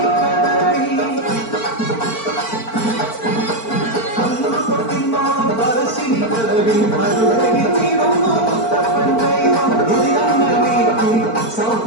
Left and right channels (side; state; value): right; late; 4.4 ms